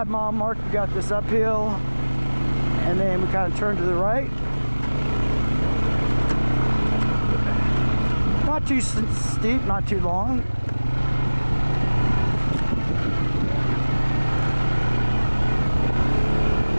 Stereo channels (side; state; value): both; inverted; correlation -1.00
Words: mile mark, we got this uphill, and then we kind of turn to the right. Not too steep, not too long.